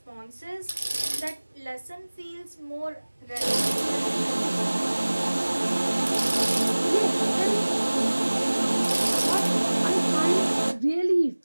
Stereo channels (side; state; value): both; inverted; correlation -1.00